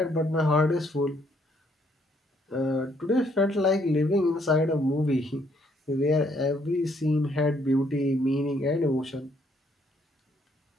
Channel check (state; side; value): normal; both; correlation 0.69